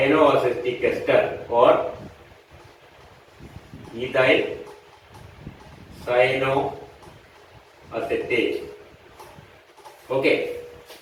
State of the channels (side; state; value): both; identical; correlation 1.00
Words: ester or ethyl cyanoacetate. Okay,